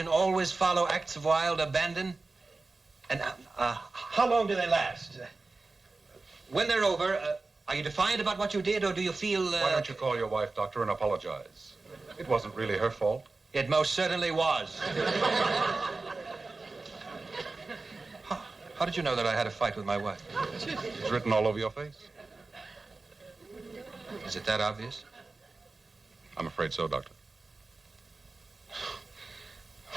always follow acts of wild abandon? And how long do they last? When they're over, are you defiant about what you did, or do you feel... Why don't you call your wife, Doctor, and apologize? It wasn't really her fault. It most certainly was. How did you know that I had a fight with my wife? It's written all over your face. Is it that obvious? I'm afraid so, Doctor.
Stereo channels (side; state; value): left; quieter; 3.6 dB